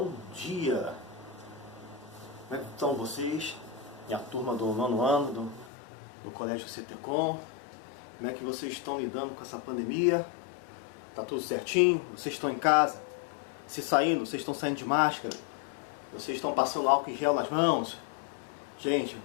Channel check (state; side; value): drops out; right; at 5.7 s